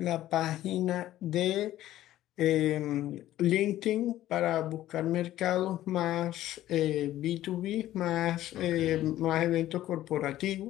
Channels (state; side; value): quieter; right; 13.9 dB